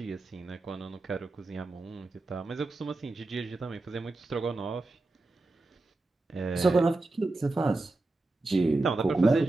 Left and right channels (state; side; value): quieter; left; 3.1 dB